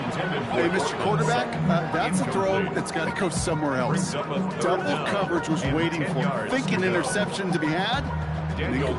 Mr. Quarterback, that's a throw that's got to go somewhere else. Double coverage was waiting for him, thinking interception to be had. And the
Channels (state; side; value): identical; both; correlation 1.00